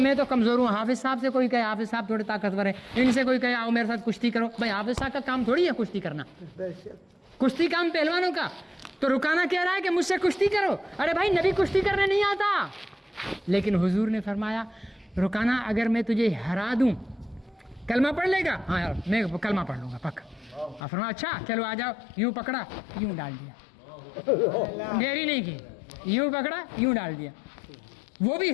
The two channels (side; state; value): right; drops out; at 20.8 s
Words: تو کمزور ہوں۔ حافظ صاحب سے کوئی کہے حافظ صاحب تھوڑے طاقتور ہیں، ان سے کوئی کہے آؤ میرے ساتھ کشتی کرو، بھائی حافظ صاحب کا کام تھوڑی ہے کشتی کرنا، کشتی کام پہلوانوں کا۔ تو رکانہ کہہ رہا ہے کہ مجھ سے کشتی کرو، ارے بھائی نبی کشتی کرنے نہیں آتا۔ لیکن حضور نے فرمایا رکانہ اگر میں تجھے ہرا دوں کلمہ پڑھ لے گا؟ ہاں یار میں کلمہ پڑھ لوں گا پکا۔ فرمایا اچھا چلو آ جاؤ، یوں پکڑا یوں ڈال دیا، دیری نہیں کی، یوں پکڑا یوں ڈال دیا۔ وہ بھی